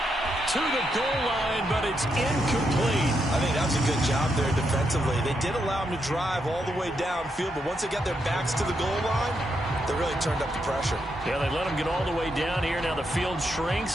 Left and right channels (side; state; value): both; normal; correlation 0.81